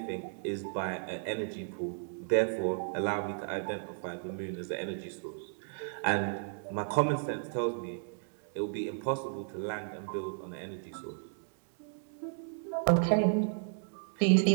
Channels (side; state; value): left; silent; digital silence